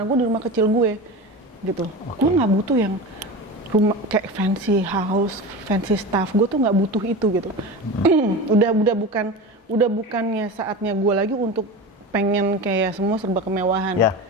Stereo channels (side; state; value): both; normal; correlation 0.28